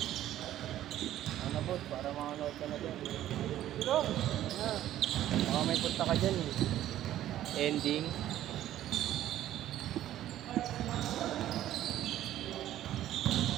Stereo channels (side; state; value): left; quieter; 12.8 dB